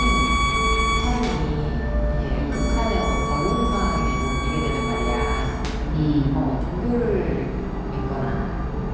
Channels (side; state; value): both; identical; correlation 1.00